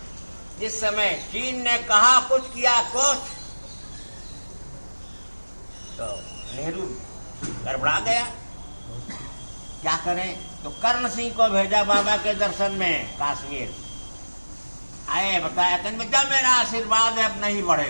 जिस समय चीन ने कहा कुछ किया कुछ, तो नेहरू गड़बड़ा गया। क्या करें? तो कर्ण सिंह को भेजा बाबा के दर्शन में कश्मीर। आए, बताया कि बेटा मेरा आशीर्वाद है, अब नहीं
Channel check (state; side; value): inverted; both; correlation -1.00